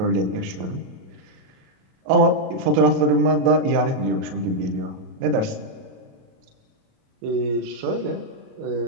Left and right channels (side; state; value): left; late; 37 ms